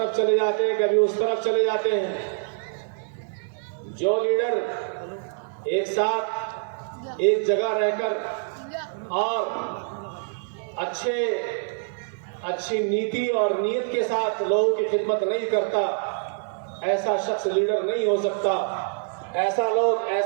चले जाते हैं, कभी उस तरफ चले जाते हैं। जो लीडर एक साथ एक जगह रहकर और अच्छी नीति और नीयत के साथ लोगों की खिदमत नहीं करता, ऐसा शख्स लीडर नहीं हो सकता। ऐसा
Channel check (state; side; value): silent; left; digital silence